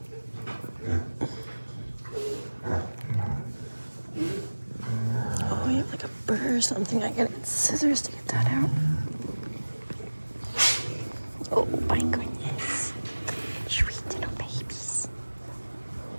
Oh, you have like a burr or something. I gotta get scissors to get that out. Oh my goodness. Sweet little babies.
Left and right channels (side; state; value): both; inverted; correlation -1.00